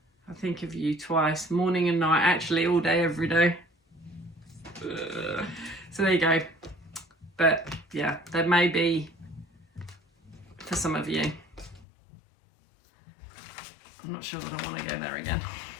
I think of you twice, morning and night, actually all day, every day. So there you go. But yeah, there may be for some of you. I'm not sure that I want to go there again.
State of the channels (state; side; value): drops out; right; at 11.9 s